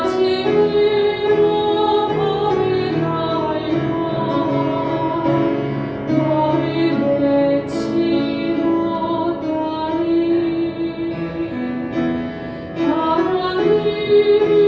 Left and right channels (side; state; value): both; identical; correlation 1.00